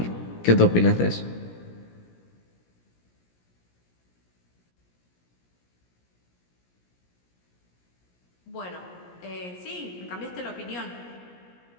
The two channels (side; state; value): right; late; 17 ms